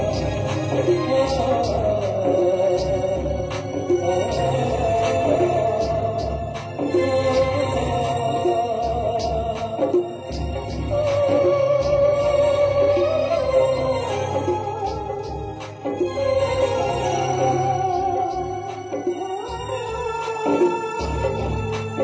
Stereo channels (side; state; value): both; identical; correlation 1.00